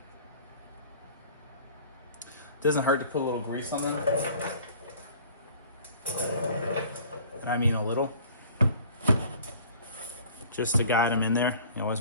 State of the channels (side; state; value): both; inverted; correlation -0.49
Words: Doesn't hurt to put a little grease on them. I mean a little. Just to guide them in there. You always